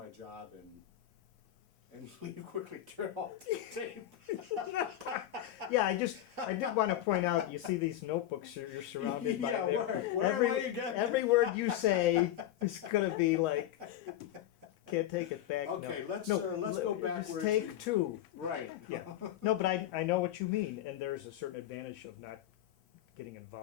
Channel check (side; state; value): right; quieter; 12.3 dB